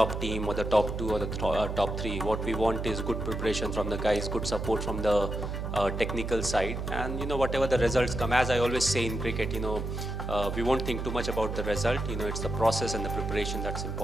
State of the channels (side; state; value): right; noise; hum, 4 dB below the sound